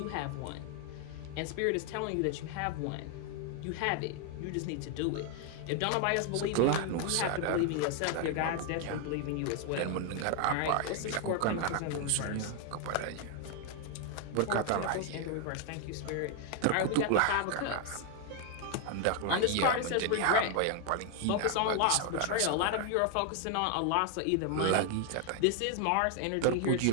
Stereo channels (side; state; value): both; different; correlation 0.00